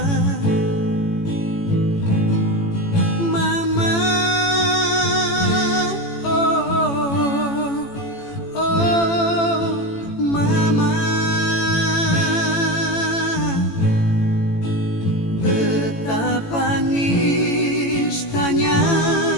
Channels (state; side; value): late; right; 18 ms